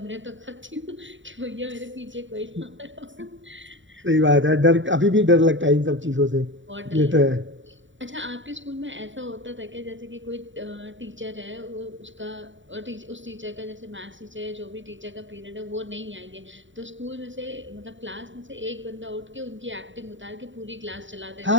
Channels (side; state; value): left; late; 0.55 ms